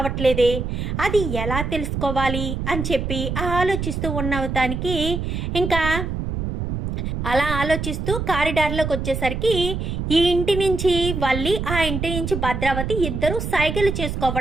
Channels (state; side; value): noise; right; rumble, 3 dB below the sound